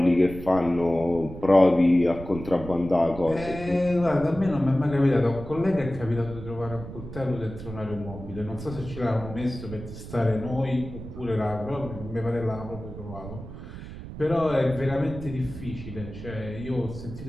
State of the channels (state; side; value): noise; right; rumble, 11 dB below the sound